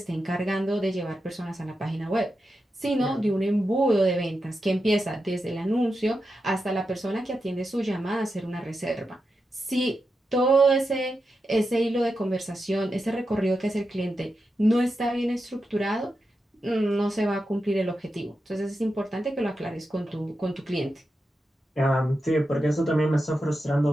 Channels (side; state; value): both; normal; correlation 0.89